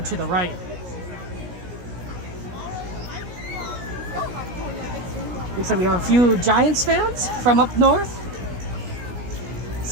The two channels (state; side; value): late; left; 17 ms